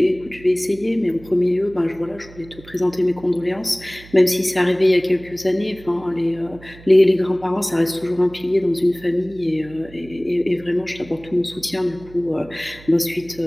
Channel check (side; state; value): right; noise; hum, 20 dB below the sound